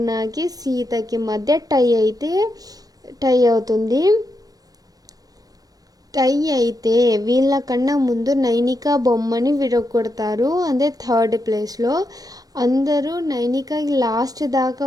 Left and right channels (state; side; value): late; left; 0.18 ms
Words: సీతకి మధ్య టై అవుతుంది. టై అయితే వీళ్ళకన్నా ముందు నైనికా బొమ్మని విరగొడతారు. అదే థర్డ్ ప్లేస్లో. అందరూ నైనికాకి లాస్ట్